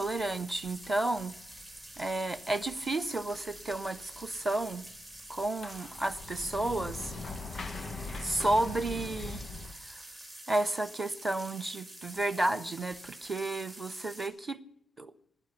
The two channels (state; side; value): normal; both; correlation 0.89